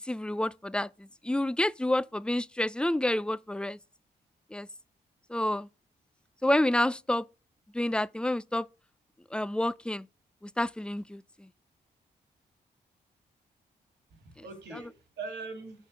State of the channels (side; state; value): both; normal; correlation 0.93